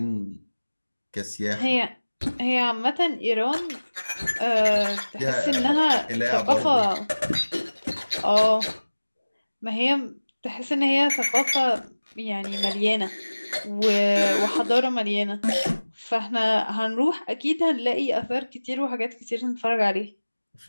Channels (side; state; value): both; inverted; correlation -1.00